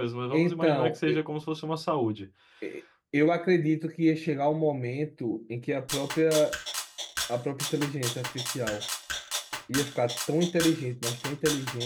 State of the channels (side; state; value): both; identical; correlation 1.00